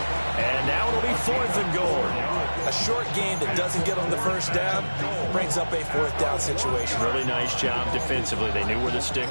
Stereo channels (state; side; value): inverted; both; correlation -1.00